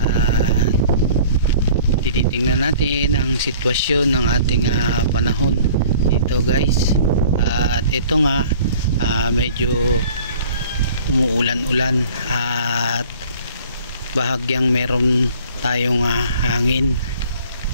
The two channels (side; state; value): both; inverted; correlation -0.49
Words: Tinitingnan natin ang sitwasyon ng ating panahon dito guys. At ito nga, medyo umuulan-ulan at bahagyang meron tayong hangin.